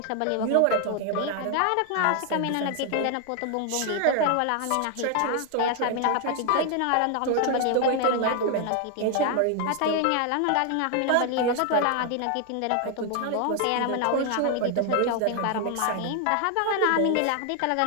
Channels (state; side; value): different; both; correlation 0.00